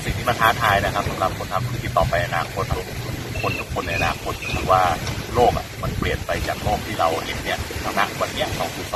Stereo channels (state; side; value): identical; both; correlation 1.00